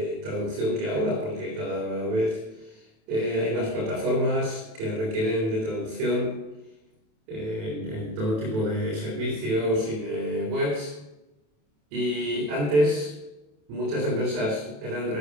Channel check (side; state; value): left; late; 27 ms